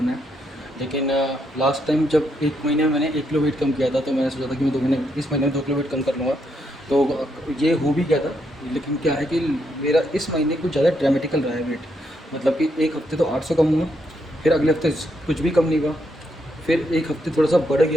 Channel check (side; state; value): both; normal; correlation 0.78